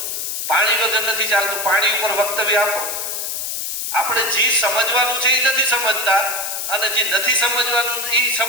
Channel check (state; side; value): noise; left; hiss, 3 dB below the sound